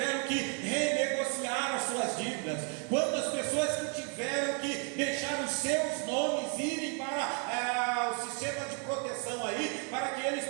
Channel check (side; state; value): left; quieter; 36.1 dB